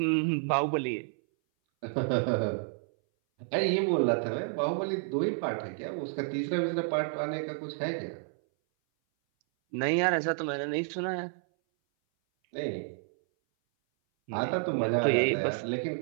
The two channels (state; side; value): silent; left; 58 dB below the other